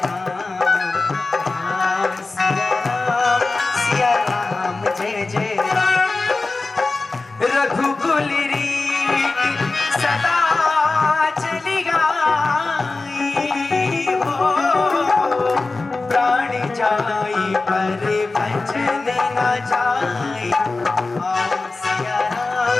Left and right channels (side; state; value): right; quieter; 3.5 dB